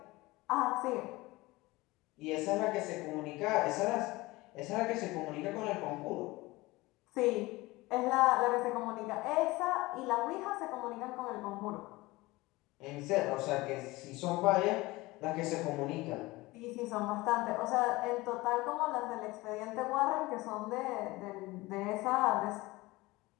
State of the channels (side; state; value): right; quieter; 21.0 dB